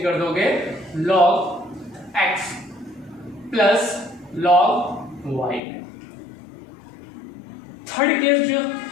कर दोगे log x plus log y। Third case जो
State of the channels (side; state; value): right; drops out; at 5.6 s